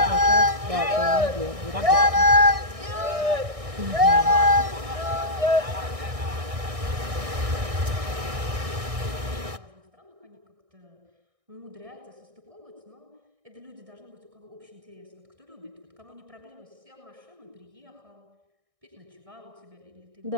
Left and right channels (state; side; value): late; left; 1.6 ms